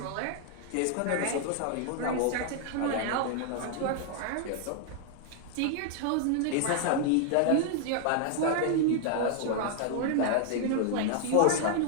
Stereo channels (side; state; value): both; different; correlation 0.00